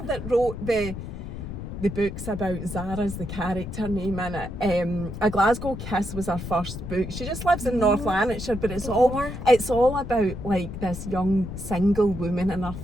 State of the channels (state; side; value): noise; left; rumble, 8 dB below the sound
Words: that wrote the books about Zara's the character name in it. A Glasgow Kiss was her first book. She just lives in North Lanarkshire, but it's all about like this young single woman in her